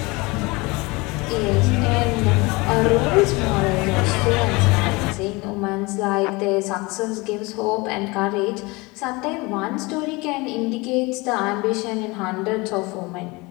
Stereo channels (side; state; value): right; quieter; 24.7 dB